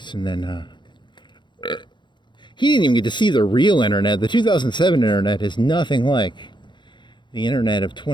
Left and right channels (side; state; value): right; late; 0.22 ms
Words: and then he didn't even get to see the real internet. The 2007 internet is nothing like the internet of